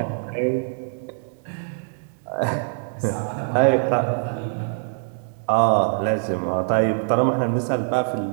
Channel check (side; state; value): left; silent; digital silence